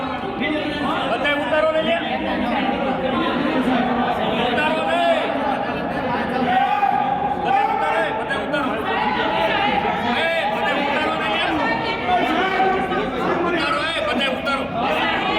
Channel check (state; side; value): identical; both; correlation 1.00